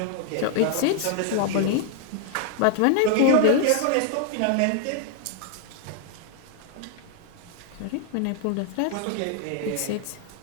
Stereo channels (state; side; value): different; both; correlation 0.00